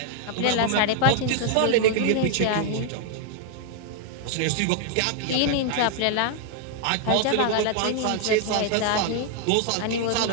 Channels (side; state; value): both; different; correlation 0.00